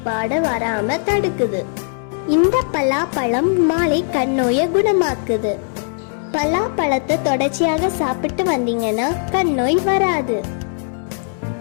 வராம தடுக்குது. இந்த பலாப்பழம் மாலை கண்ணோயை குணமாக்குது. பலாப்பழத்தை தொடர்ச்சியாக சாப்பிட்டு வந்தீங்கன்னா கண்ணோய் வராது.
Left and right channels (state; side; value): silent; right; digital silence